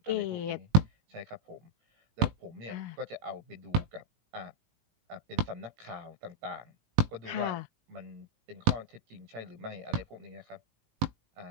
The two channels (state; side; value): late; left; 19 ms